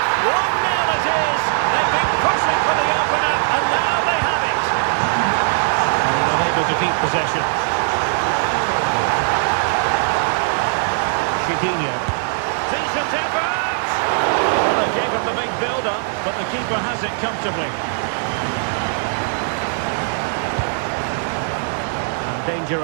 To keep possession. Chiquinho. Decent effort! Well, they gave him the big build-up, but the keeper has it comfortably. And danger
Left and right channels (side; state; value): left; silent; 60 dB below the other